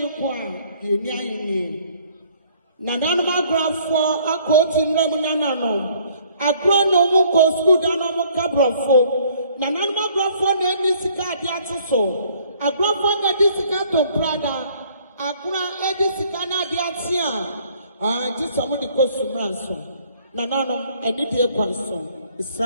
yenya yini. Nananuma grafo akoti nremu nanano. Agro no mu ko school dano mu kabrofo. Nananuma grafo na eni sika ade atoso. Agrafo na di sika to brada. Agra edi sika na ade atia. Just amu di ko sumranso. Nanano eni die kwanso.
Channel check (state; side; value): inverted; both; correlation -0.60